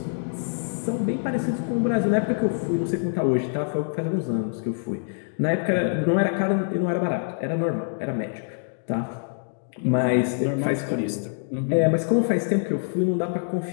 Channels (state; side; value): silent; right; digital silence